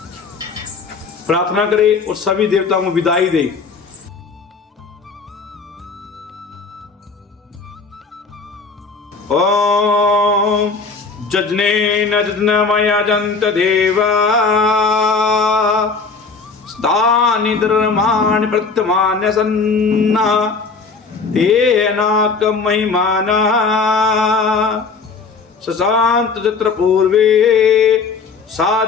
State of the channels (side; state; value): right; quieter; 4.6 dB